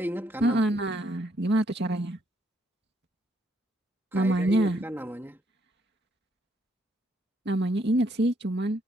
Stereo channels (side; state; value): both; normal; correlation 0.71